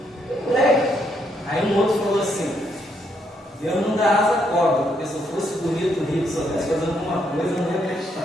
moleque. Aí um outro falou assim: Deus não dá asa à cobra, porque se eu fosse bonito, rico, soubesse fazer alguma coisa, eu não ia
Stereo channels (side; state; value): both; normal; correlation 0.74